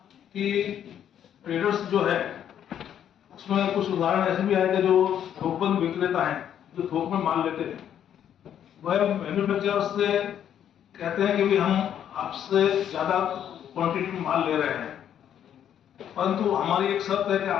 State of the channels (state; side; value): quieter; right; 9.7 dB